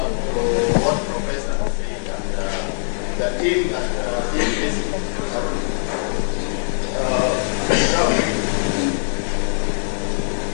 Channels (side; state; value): right; silent; digital silence